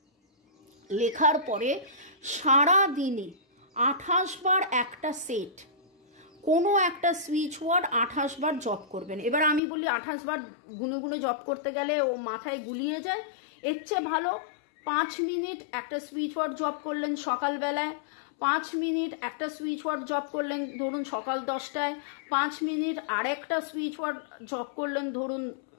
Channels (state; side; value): drops out; right; at 9.6 s